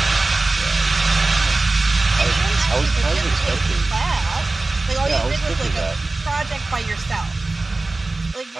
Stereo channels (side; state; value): left; quieter; 3.2 dB